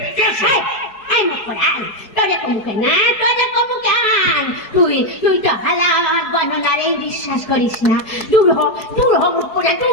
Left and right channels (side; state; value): right; late; 4.7 ms